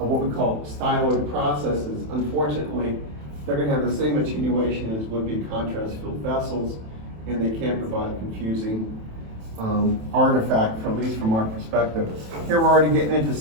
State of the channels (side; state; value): left; late; 27 ms